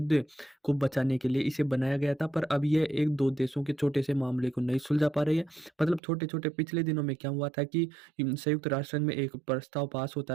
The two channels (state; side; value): drops out; left; at 6.0 s